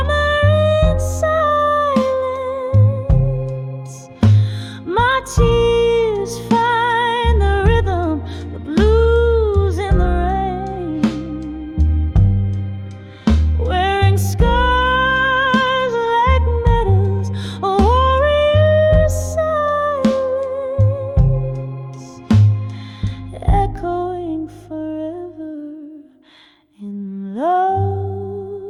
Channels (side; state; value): both; identical; correlation 1.00